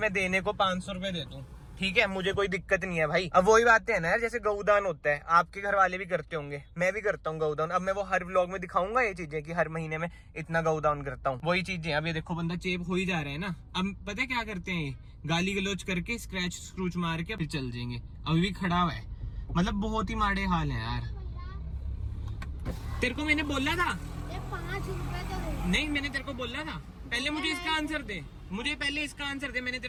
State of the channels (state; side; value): identical; both; correlation 1.00